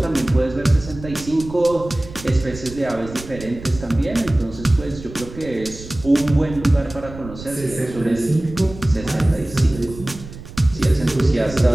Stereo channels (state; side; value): noise; right; rumble, 14 dB below the sound